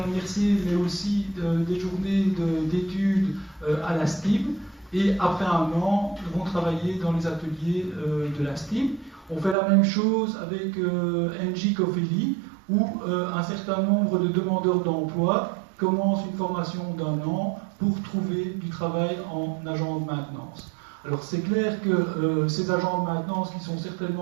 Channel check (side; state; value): left; drops out; at 9.6 s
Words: mais aussi des journées d'études à la STIM, et après un an vont travailler dans les ateliers de la STIM. On fait la même chose avec NG Cofeli, où un certain nombre de demandeurs d'emploi commencent une formation d'1 an pour trouver du travail en agent de maintenance. Alors c'est clair que ces agents de maintenance qui sont